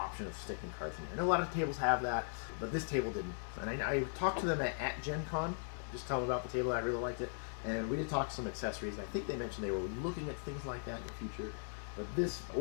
of sticking cards in here. I know a lot of tables have that, but this table didn't. And I talked to them at Gen Con, just tell them about the table. I really liked it. And we did talk some accessories. I think they mentioned they were looking at things like that in the future. But this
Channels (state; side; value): silent; right; 52 dB below the other